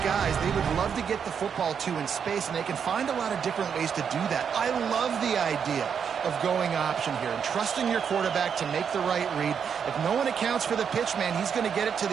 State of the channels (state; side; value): quieter; left; 7.2 dB